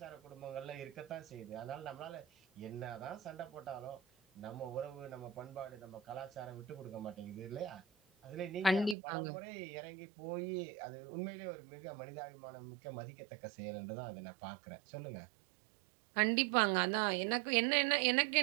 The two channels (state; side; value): drops out; left; at 9.0 s